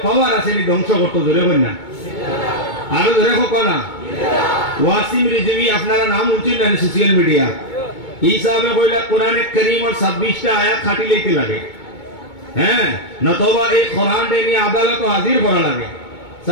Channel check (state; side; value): late; right; 2.2 ms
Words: পাওয়ার আছে নি ধ্বংস করতে জোরে হয় না আরো ধরে হোক না ওয়াসিম রিজভী আপনারা নাম উঠছেন না সোশ্যাল মিডিয়া এই সাহেব কইলা কোরআনে কারীমের 26টা আয়াত খাটি লইতে লাগে হ্যাঁ নতবা এই কোরআন নিয়ে আদালতে হাজির করা লাগে